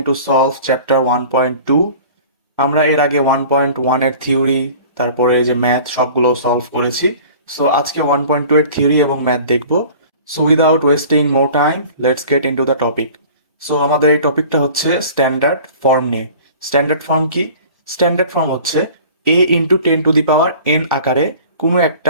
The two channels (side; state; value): both; inverted; correlation -0.44